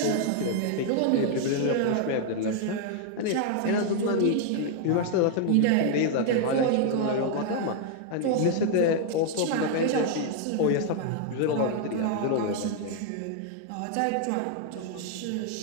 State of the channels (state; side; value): different; both; correlation 0.00